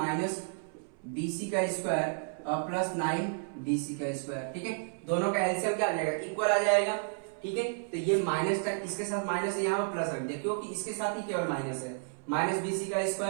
BC का स्क्वायर और प्लस 9 BC का स्क्वायर, ठीक है। दोनों का एलसीएम क्या आ जाएगा, इक्वल आ जाएगा, ठीक है। तो ये माइनस का इसके साथ माइनस है, यहाँ पर प्लस रख दिया क्योंकि इसके साथ ही केवल माइनस है, माइनस BC का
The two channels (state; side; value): silent; left; 57 dB below the other